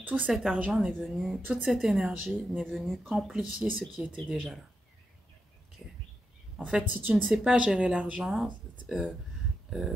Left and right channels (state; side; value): normal; both; correlation 0.86